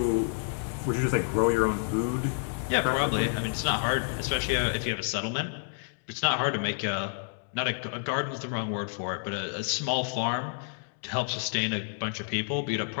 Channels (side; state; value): right; silent; digital silence